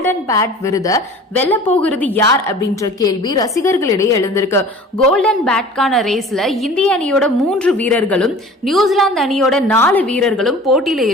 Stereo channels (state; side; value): normal; both; correlation 0.43